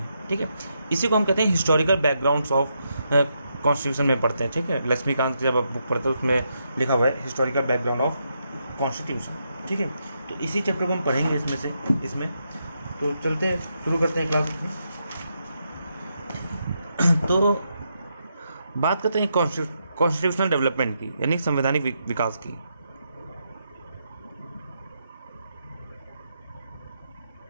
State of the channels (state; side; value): inverted; both; correlation -0.81